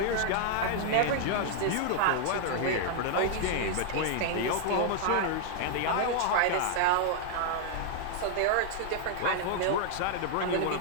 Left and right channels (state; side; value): different; both; correlation 0.00